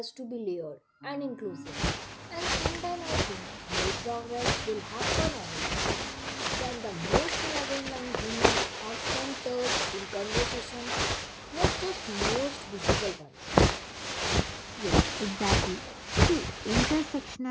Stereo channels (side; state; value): both; identical; correlation 1.00